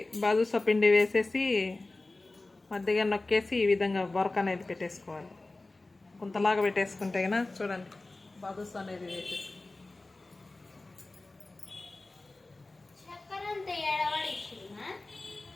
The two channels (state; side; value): quieter; right; 3.1 dB